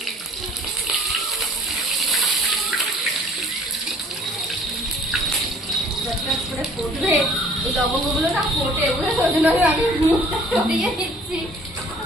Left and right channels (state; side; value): normal; both; correlation 0.55